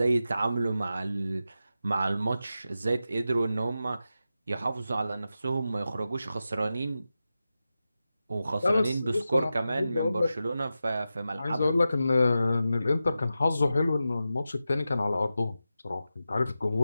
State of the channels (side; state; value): both; inverted; correlation -0.91